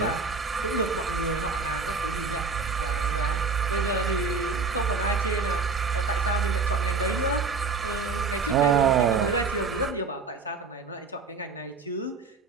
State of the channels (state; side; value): quieter; left; 4.6 dB